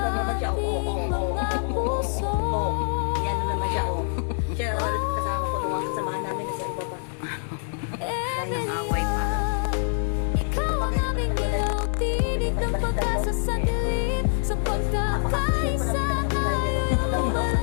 naman siya, oh. ating mga puso. Ayan na naman siya, oh. Siya, kasama ko nung kasamahan namin sa ibaba. away pa. Ikaw ang aming ilaw, tinig ng pag-asa sa dilim. Sa pagkakaisa tayo yung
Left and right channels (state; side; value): silent; right; 61 dB below the other